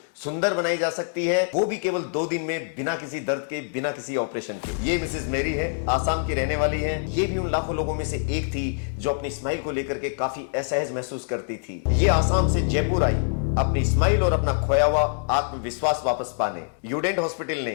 सुंदर बनाई जा सकती है, वो भी केवल 2 दिन में, बिना किसी दर्द के, बिना किसी ऑपरेशन के। ये मिसेज मेरी है, आसाम की रहने वाली है। ये भी उन लाखों लोगों में से एक थी जो अपनी स्माइल को लेकर के काफी असहज महसूस करती थी। ये आसाम से जयपुर आई अपनी स्माइल और अपना खोया हुआ आत्मविश्वास वापस पाने। यूडेंट हॉस्पिटल ने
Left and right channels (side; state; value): right; silent; digital silence